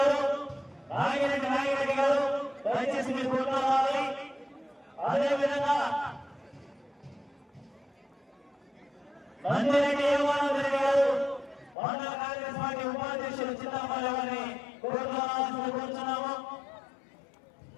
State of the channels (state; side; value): drops out; right; at 11.8 s